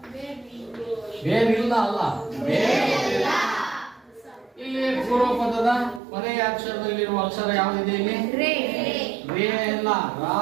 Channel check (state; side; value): drops out; left; at 6.0 s